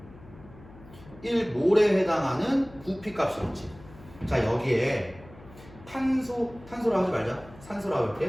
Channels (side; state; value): left; noise; hum, 21 dB below the sound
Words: 1몰에 해당하는 부피값이었지. 자, 여기에 탄소라 하지 말자. 산소라고